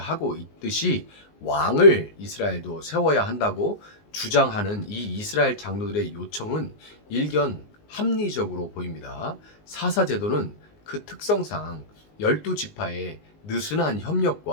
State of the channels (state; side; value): late; right; 19 ms